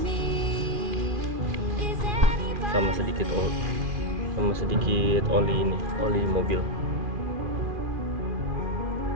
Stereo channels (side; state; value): left; late; 2.4 ms